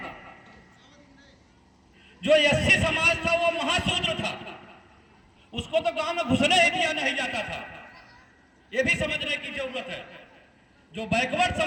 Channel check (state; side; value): identical; both; correlation 1.00